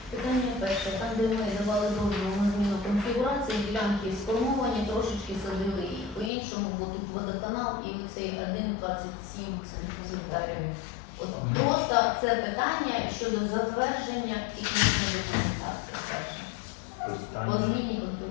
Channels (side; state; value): right; drops out; at 6.3 s